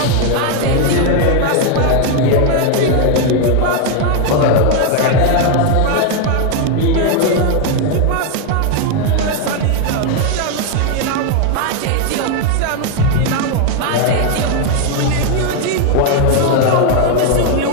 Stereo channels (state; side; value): different; both; correlation 0.01